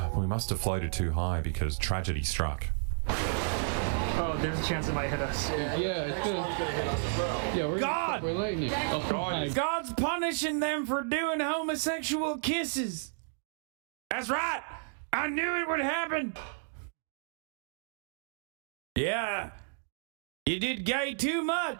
We must have floated too high because tragedy struck. Oh, there's a chance it might hit us. Yeah, it's gonna hit us as well. Yeah, we're lightning. Oh, God's punishing them for doing homosexual kisses. That's right. I knew it would happen. Yeah. You did gay too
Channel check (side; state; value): left; silent; digital silence